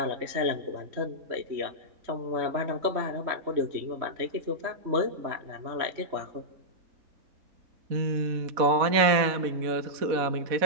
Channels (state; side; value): late; left; 4.1 ms